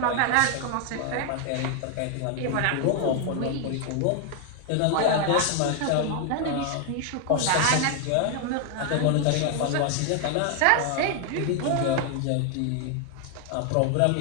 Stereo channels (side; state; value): both; different; correlation 0.00